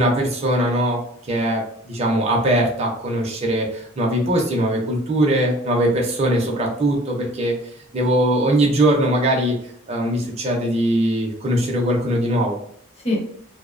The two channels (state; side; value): normal; both; correlation 0.51